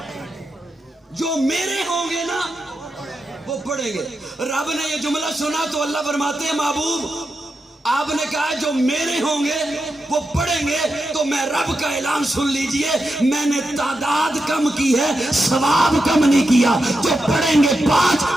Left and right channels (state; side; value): normal; both; correlation 0.88